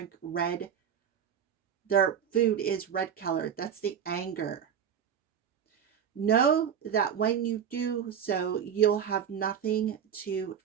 red. Their food is red colored. That's the anger. Know that when you do so, you'll have nothing to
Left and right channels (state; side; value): quieter; left; 8.3 dB